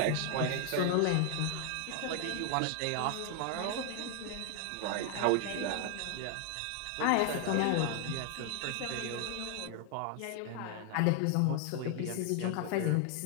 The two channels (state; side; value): different; both; correlation 0.00